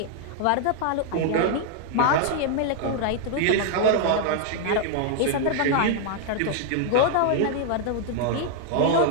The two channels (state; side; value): different; both; correlation 0.00